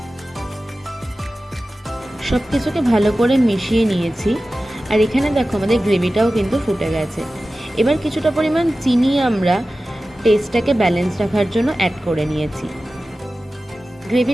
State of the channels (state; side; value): normal; both; correlation 0.95